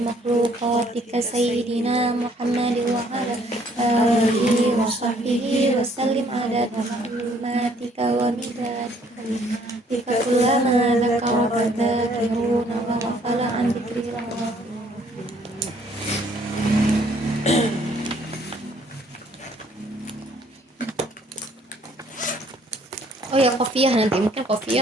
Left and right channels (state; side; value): normal; both; correlation 0.63